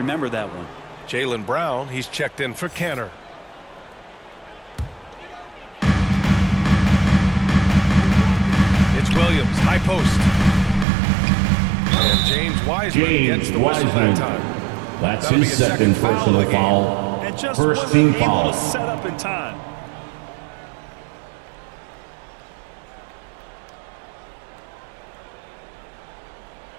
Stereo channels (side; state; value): left; drops out; at 10.9 s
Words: that one. Jaylen Brown, he's checked in for Cantor. It's Williams, high post. And James Wiseman gets the whistle that time. That's That'll his be a second foul of personal the game. foul. And just First wasn't team able foul. to set up in time.